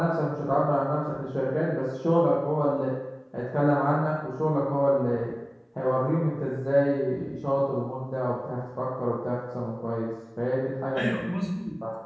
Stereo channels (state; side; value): identical; both; correlation 1.00